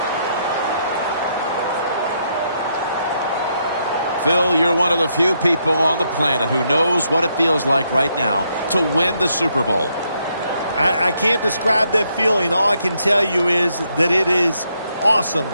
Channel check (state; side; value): inverted; both; correlation -0.76